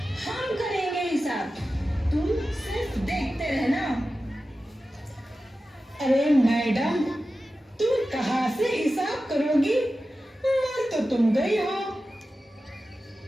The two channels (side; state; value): both; normal; correlation 0.94